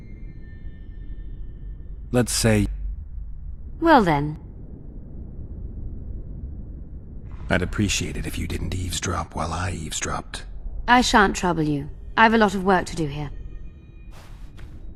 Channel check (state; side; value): identical; both; correlation 1.00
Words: Let's say... Well then. I'd appreciate it if you didn't eavesdrop while I eavesdropped. I shan't trouble you. I've a lot of work to do here.